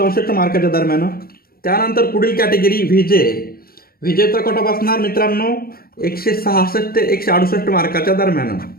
मार्काच्या दरम्यान. त्यानंतर पुढील कॅटेगरी व्हीजेचा कट ऑफ असणार मित्रांनो 166 ते 168 मार्काच्या दरम्यान.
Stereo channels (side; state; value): right; late; 0.43 ms